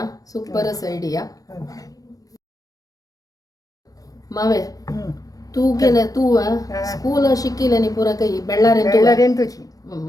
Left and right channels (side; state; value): right; late; 0.17 ms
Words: सुपरस आयडिया मावे तू गेले तू स्कूल शिकिले पुरा काही बेळ्ळारे तुझी